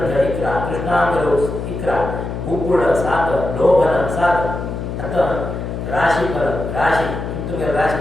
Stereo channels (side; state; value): left; noise; hum, 5 dB below the sound